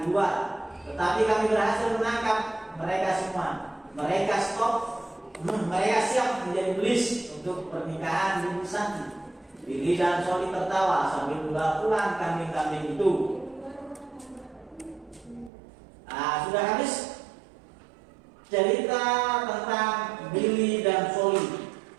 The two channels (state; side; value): drops out; left; at 15.5 s